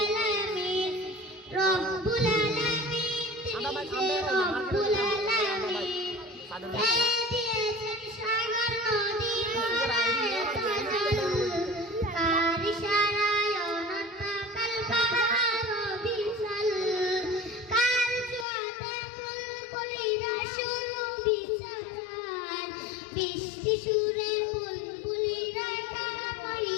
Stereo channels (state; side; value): drops out; right; at 18.4 s